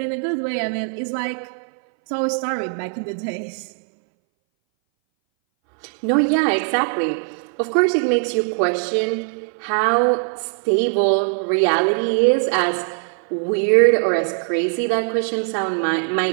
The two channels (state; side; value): silent; left; 61 dB below the other